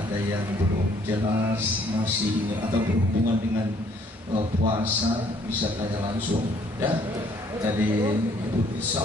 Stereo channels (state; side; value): normal; both; correlation 0.63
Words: yang belum jelas, masih atau berhubungan dengan puasa, bisa tanya langsung ya. Tadi